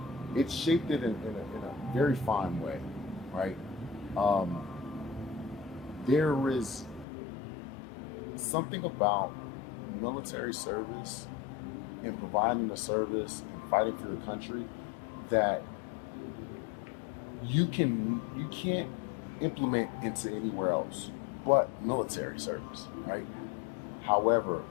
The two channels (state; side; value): drops out; right; at 7.1 s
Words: It shaped it in a very fine way, right? Um, there is something about military service and providing the service and fighting for the country that you can't implement into anywhere else but military service, right? However,